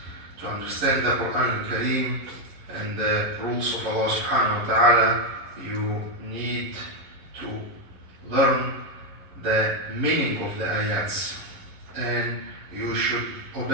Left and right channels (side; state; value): left; late; 11 ms